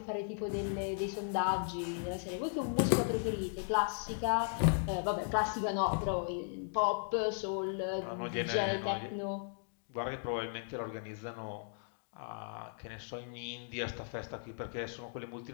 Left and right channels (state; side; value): silent; right; digital silence